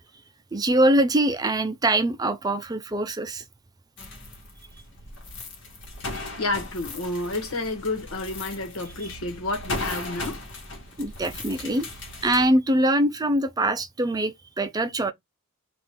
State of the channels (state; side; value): normal; both; correlation 0.41